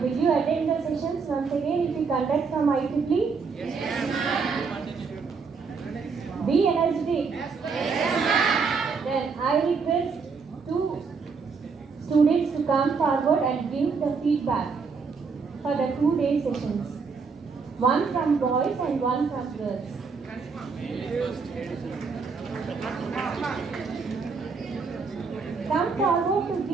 will you attend the sessions once again if you conduct from IEEE? Be energetic. Then I request two students to come forward and give the feedback for the 2-day sessions. One from boys and one from girls. Come forward to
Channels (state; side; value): quieter; left; 5.1 dB